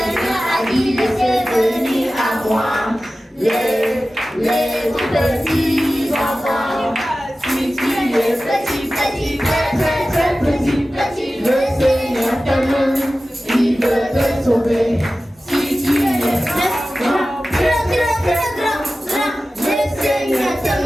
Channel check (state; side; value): normal; both; correlation 0.95